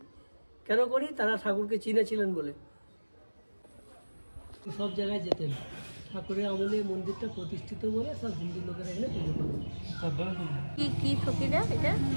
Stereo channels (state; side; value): inverted; both; correlation -1.00